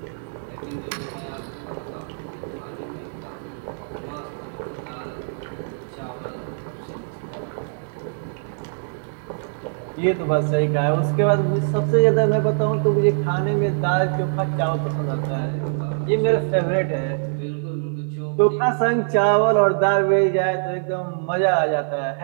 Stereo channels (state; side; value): silent; left; digital silence